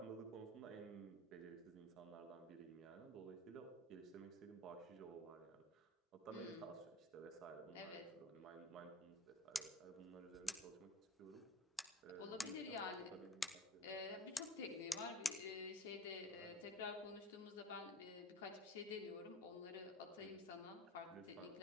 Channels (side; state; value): both; normal; correlation 0.39